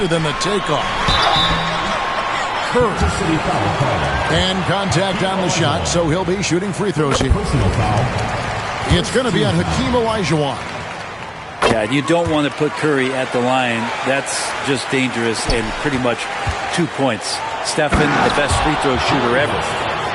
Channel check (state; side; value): identical; both; correlation 1.00